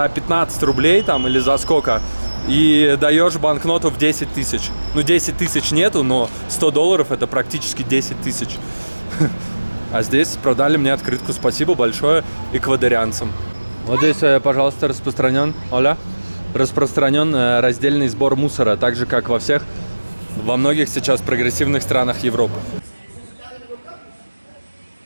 15 рублей там или за сколько, и даешь банкноту в 10 тысяч. Ну, 10 тысяч нету, но $100 это практически 10 тысяч. А здесь продали мне открытку. Спасибо большое эквадорянцам. Вот здесь, пожалуйста, распространен раздельный сбор мусора, так же, как во многих сейчас прогрессивных странах Европы.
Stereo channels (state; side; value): inverted; both; correlation -1.00